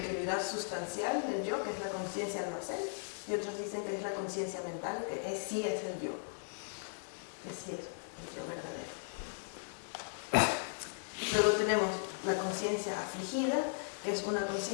sustancial del yo, que es la conciencia almacén, y otros dicen que es la conciencia mental, que sí es el yo, que sí es el yo verdadero. Luego tenemos la conciencia afligida, que es una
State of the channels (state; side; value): silent; right; digital silence